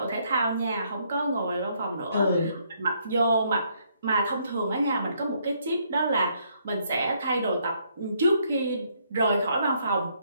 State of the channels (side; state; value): both; inverted; correlation -0.70